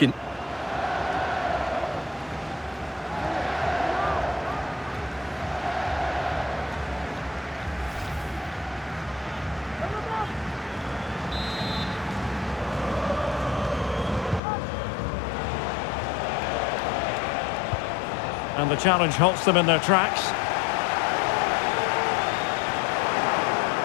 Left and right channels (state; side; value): drops out; right; at 14.4 s